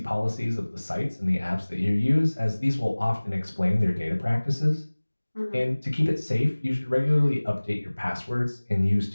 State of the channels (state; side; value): inverted; both; correlation -1.00